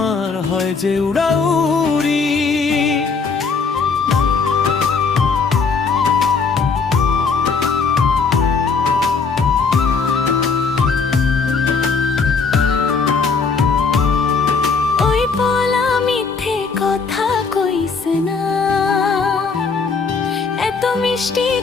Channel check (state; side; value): quieter; right; 4.9 dB